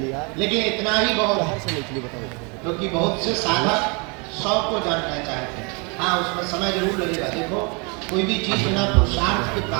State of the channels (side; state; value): left; quieter; 32.1 dB